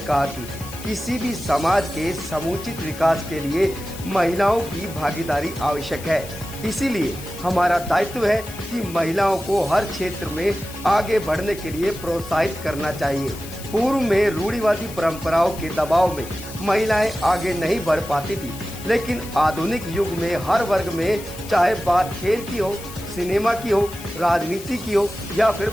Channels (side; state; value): left; noise; hiss, 15 dB below the sound